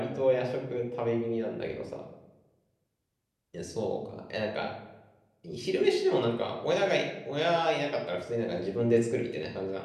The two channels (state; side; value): identical; both; correlation 1.00